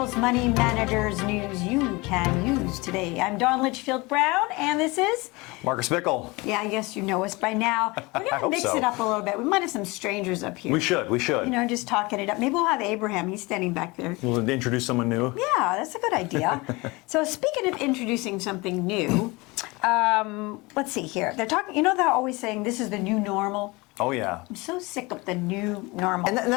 Money Managers News You Can Use today. I'm Don Litchfield Brown, and this is Marcus Bickle. Yeah, I guess you know us by now. We're going to mix it up a little bit. We might have some strangers up here. We should. You know, just talking it up. Maybe we'll have Abraham. He's standing back there. We'll introduce someone new. Yeah, that's a good idea. So speaking of introducing something new, let's see here. They're talking, you know, they're always saying this is the new normal. Oh, yeah. I'm so sick of the new normal. And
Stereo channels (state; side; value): quieter; right; 24.2 dB